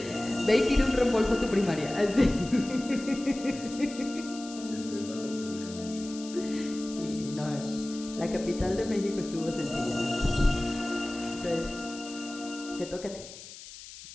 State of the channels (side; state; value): left; noise; hiss, 15 dB below the sound